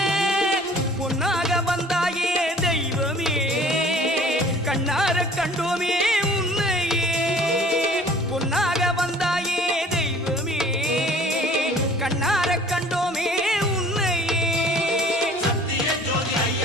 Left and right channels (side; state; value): both; normal; correlation 0.51